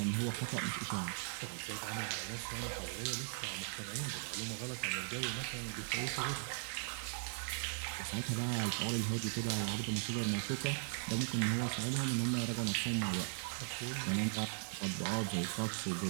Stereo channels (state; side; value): silent; left; digital silence